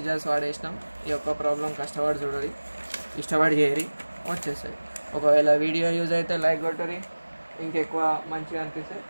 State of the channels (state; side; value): inverted; both; correlation -1.00